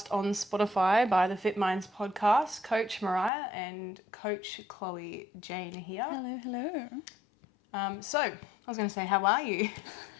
on Spotify by the Fit Minds podcast. Coach Mariah and Coach Chloe Jane here. Hello. So, I was going to say, how are you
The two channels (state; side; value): drops out; right; at 3.3 s